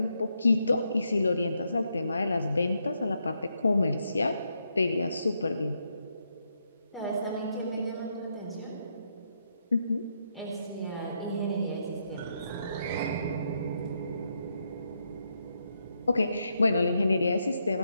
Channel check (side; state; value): both; inverted; correlation -0.79